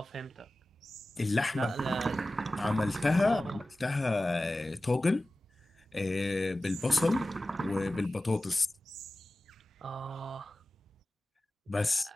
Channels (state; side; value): normal; both; correlation 0.96